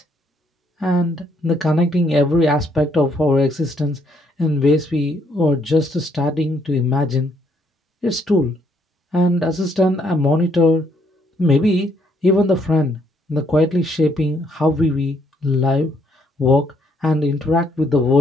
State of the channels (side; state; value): both; normal; correlation 0.70